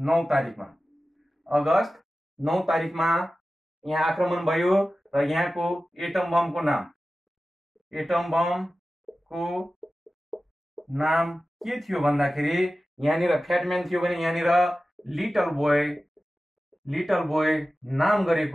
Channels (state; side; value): normal; both; correlation 0.95